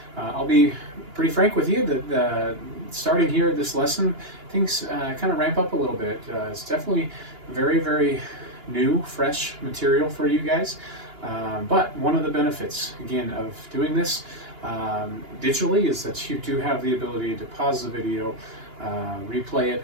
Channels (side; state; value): left; late; 2.9 ms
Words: I'll be pretty frank with you that starting here at this lesson, things kind of ramp up a little bit. It's definitely very, very new, fresh material for you guys. But one of the benefits, again, of doing this digitally is that you do have the ability to pause the video, replay it,